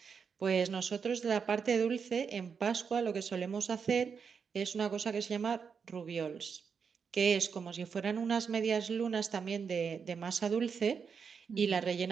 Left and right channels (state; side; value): quieter; left; 6.2 dB